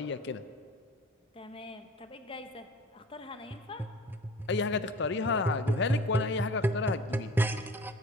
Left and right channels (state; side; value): normal; both; correlation 0.43